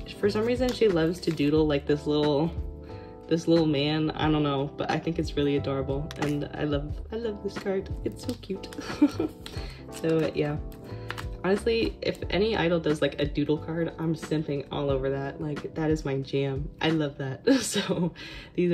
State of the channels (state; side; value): identical; both; correlation 1.00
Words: For some reason, she loves to doodle like this little man. I don't know, but I think it's really adorable, and I love this card. It's so cute. So yeah. Honestly, if any idol does like a doodle card, I'm simping all over that. Like, that is my jam. I love that. So these